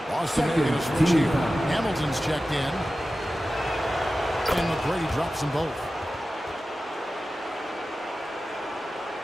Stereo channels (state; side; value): normal; both; correlation 0.94